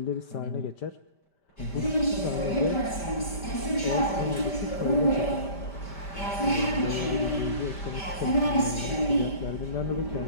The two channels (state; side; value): late; right; 5.1 ms